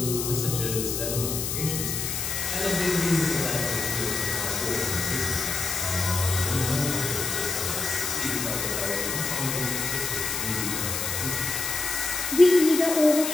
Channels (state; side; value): noise; left; hiss, 2 dB below the sound